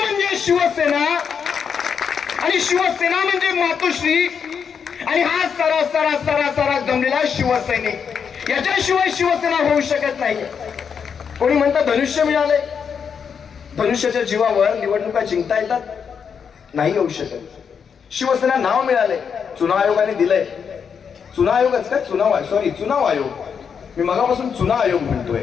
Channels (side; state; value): right; quieter; 6.8 dB